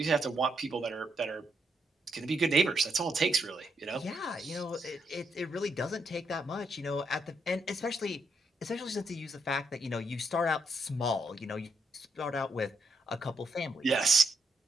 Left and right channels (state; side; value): normal; both; correlation 0.77